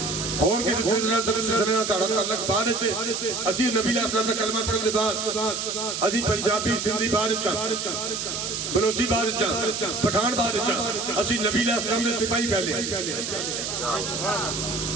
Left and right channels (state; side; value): noise; right; hiss, 3 dB below the sound